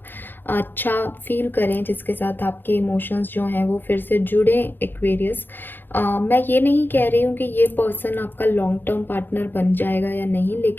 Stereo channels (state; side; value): late; right; 0.096 ms